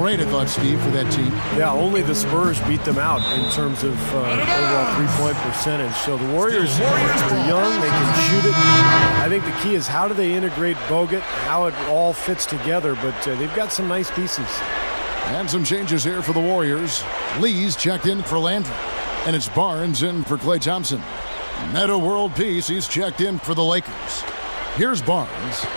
rate, I thought, Steve, for that team. Yeah, only the Spurs beat them out in terms of overall three-point percentage. So the Warriors are young. They can shoot it. I think the key is how do they integrate Bogut, how it all fits together. But they've got some nice pieces. And some changes here for the Warriors. Lee's checked in for Landry. And it's Barnes in for Klay Thompson. Metta World Peace, he's checked in for the Lakers. Here's Barnes.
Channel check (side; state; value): both; inverted; correlation -1.00